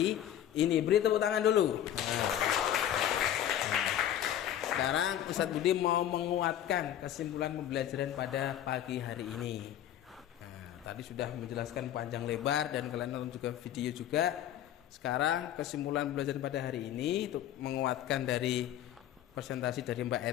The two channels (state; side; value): quieter; right; 11.2 dB